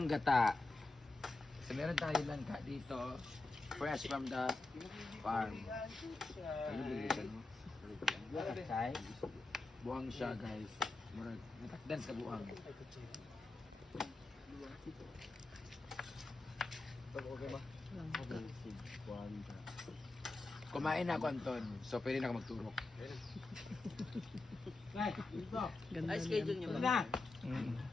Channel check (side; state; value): right; quieter; 3.3 dB